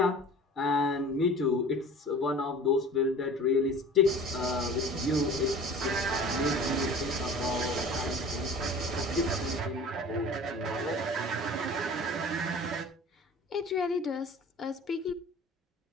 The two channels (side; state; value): both; normal; correlation 0.42